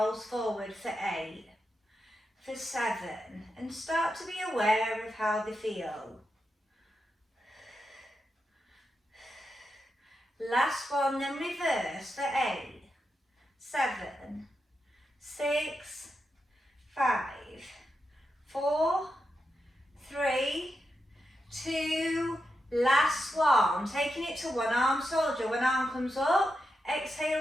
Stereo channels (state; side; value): normal; both; correlation 0.87